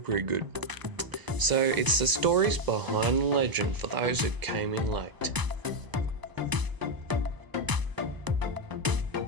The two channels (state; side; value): late; left; 1.0 ms